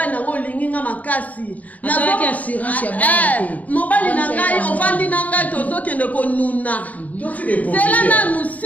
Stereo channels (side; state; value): right; late; 0.073 ms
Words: nanga olingi nga makasi na assurance ya mobali nanga ovandi nanga tozokende konuna là nous